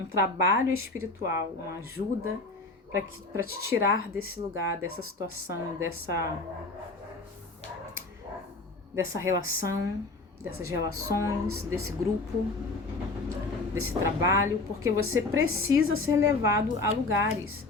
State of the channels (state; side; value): quieter; right; 3.3 dB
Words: trabalho espiritual, uma ajuda para te tirar desse lugar, dessa situação, dessa relação, dessas relações, desse grupo, desse trabalho, porque você precisa ser levado a lugares.